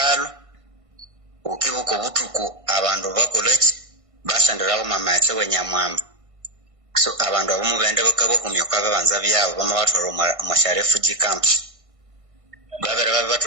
ukibuko butuku abantu bakoleki bashandirawo mama yatse wenyamwamba so abantu abamu bende bakabakumya kwa bebanza byabo bama batoro mu refugee camps babera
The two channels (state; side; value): late; left; 1.5 ms